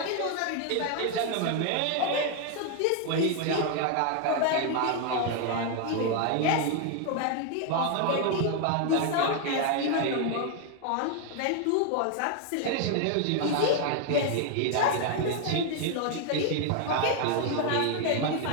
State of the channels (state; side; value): different; both; correlation 0.00